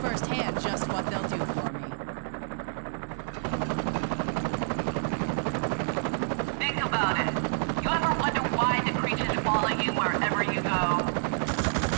just what they'll do for me. Think about it. You ever wonder why the creatures follow you wherever you go?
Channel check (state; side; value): silent; left; digital silence